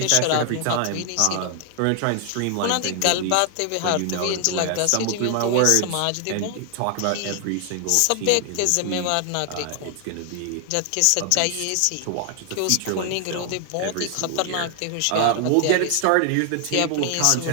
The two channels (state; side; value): different; both; correlation 0.00